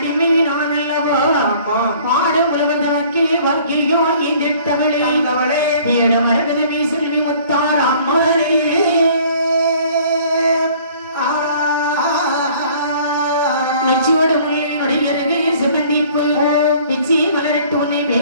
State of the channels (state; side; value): inverted; both; correlation -0.54